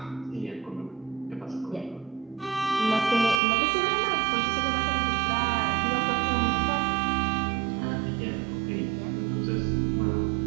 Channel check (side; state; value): left; drops out; at 3.4 s